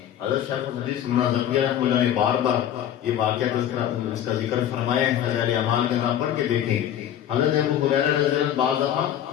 حضرت شیخ الحدیث مولانا زکریا رحمۃ اللہ نے بار بار یہ واقعہ اس کا ذکر فرمایا ہے، فضائل اعمال کا نام پڑھ کے دیکھیں۔ حضرت ابو ہریرہ رضی اللہ عنہ بعض دفعہ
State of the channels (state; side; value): quieter; right; 10.6 dB